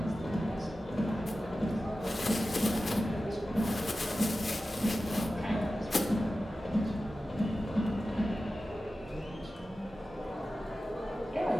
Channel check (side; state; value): both; normal; correlation 0.94